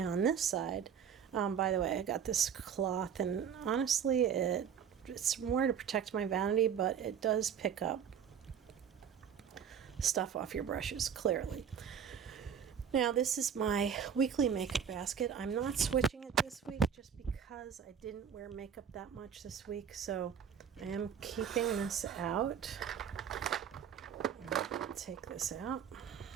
on this side, by the way, I got this cloth, and honestly, it's more to protect my vanity, but it does pick up stuff off your brushes, clearly. Now, this is my weekly makeup basket. I'm not switching it this week just because I didn't wear makeup that much this week, so I am keeping this out. Take this out.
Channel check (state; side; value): quieter; left; 7.8 dB